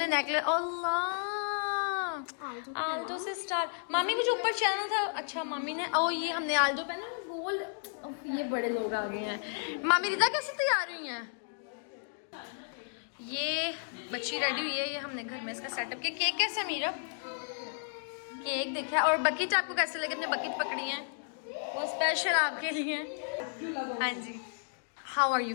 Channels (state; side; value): silent; right; digital silence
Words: नेकलेस, अल्लाह आल्टो से स्टार। मामी को जो ऊपर चैनल था, अच्छा मामी ने, ओ ये हमने आल्टो पहना गोल्ड। ये बड़े लोग आ गए हैं। मामी रिदा कैसे तैयार हुई हैं? ये बच्ची रेडी हुई है, ये हमने घर में इसका सेटअप किया। केक कैसा मीरब? केक देखा। और बकेट आपको कैसे लगे? अपने बकेट पकड़ी है वो स्पेशल आपके लिए। हाँ जी, how are you